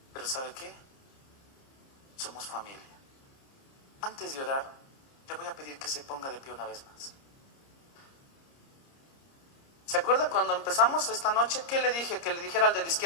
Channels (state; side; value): late; right; 30 ms